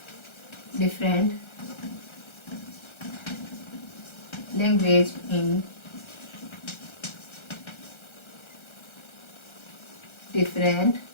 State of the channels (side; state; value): right; late; 1.3 ms